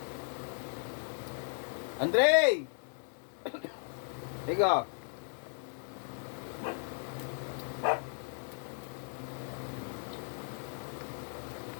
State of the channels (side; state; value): right; silent; 54 dB below the other